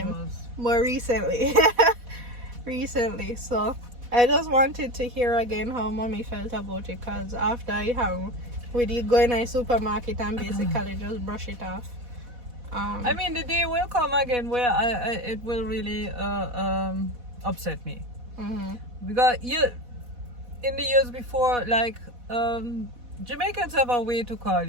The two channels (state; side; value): late; left; 4.1 ms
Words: them. was- More recently. Recently. So I just wanted to hear again how mommy felt about it, because after I have we did go in a supermarket and basically just brush it off. I mean, the day will come again where it will really upset me. Because in the years before, like Jamaicans have a way to call